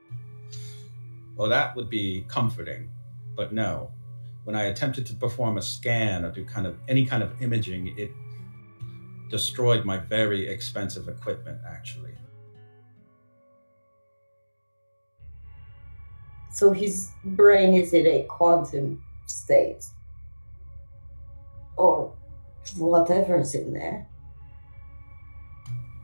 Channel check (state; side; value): inverted; both; correlation -1.00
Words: Well, that would be comforting, but no. When I attempted to perform a scan or do any kind of imaging, it destroyed my very expensive equipment, actually. So his brain is in a quantum state. Or whatever's in there.